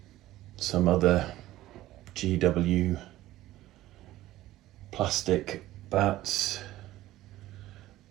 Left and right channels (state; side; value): quieter; left; 15.5 dB